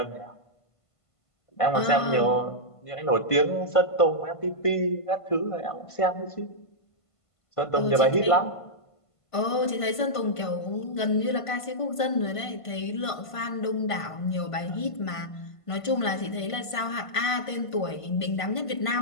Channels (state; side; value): late; right; 1.5 ms